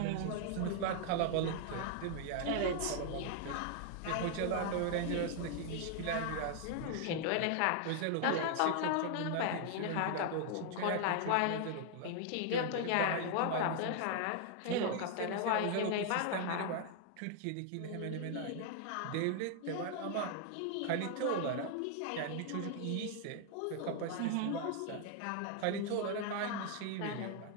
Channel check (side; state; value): both; different; correlation 0.00